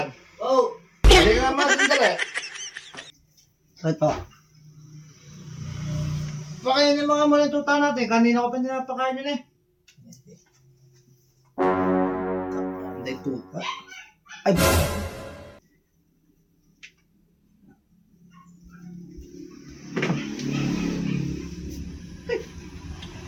Oh! Hindi ka naman sandali. Bakit po? Pakainin mga muna yung tuta natin. Kanina ko pa pinapakain yun eh. Hindi po. Ay!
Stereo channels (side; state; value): both; identical; correlation 1.00